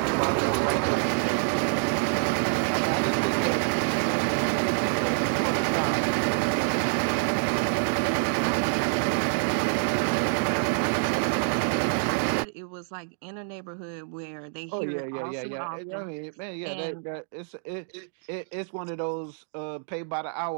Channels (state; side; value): silent; left; digital silence